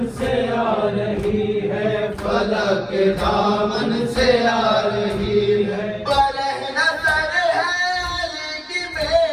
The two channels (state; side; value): identical; both; correlation 1.00